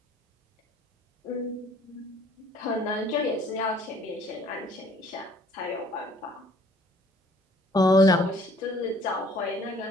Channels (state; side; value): normal; both; correlation 0.58